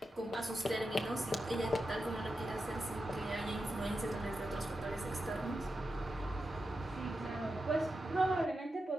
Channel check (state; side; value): normal; both; correlation 0.89